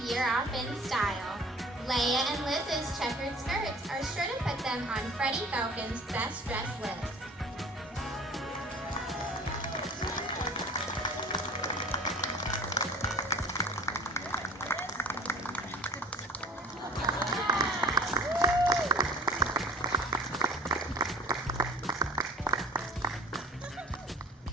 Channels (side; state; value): both; normal; correlation 0.45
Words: year off in style. Leia and Liz's checkered skirts are sure to put them on Freddie Falcon's best dress list.